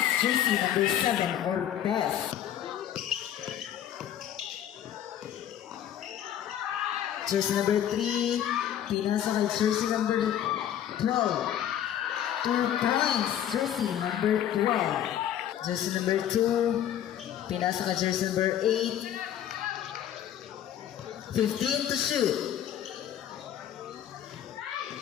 Jersey number 7 or best. Jersey number 3. Pinasa kay jersey number 12. 2 points. Jersey number 12. Jersey number 2. Pinasa ka jersey number 8. 15 to shoot.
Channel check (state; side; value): quieter; right; 10.6 dB